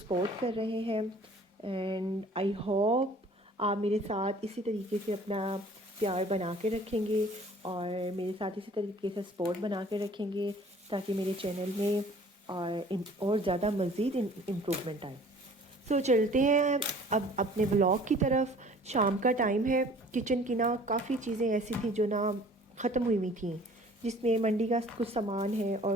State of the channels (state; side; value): normal; both; correlation 0.51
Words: कर रहे हैं। एंड आई होप आप मेरे साथ इसी तरीके से अपना प्यार बना के रखेंगे और मेरे साथ इसी तरीके से सपोर्ट बना के रखेंगे ताकि मेरे चैनल में और ज़्यादा मज़ीद इम्प्रूवमेंट आए। तो चलते हैं अब अपने व्लॉग की तरफ। शाम का टाइम है। किचन की ना काफ़ी चीज़ें ऐसी थी जो ना ख़त्म हुई हुई थी, जिसमें मंडी का कुछ सामान है